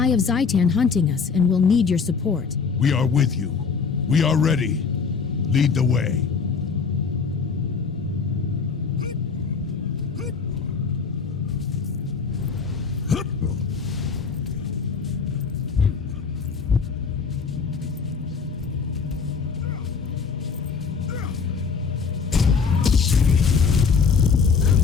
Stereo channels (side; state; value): right; quieter; 5.5 dB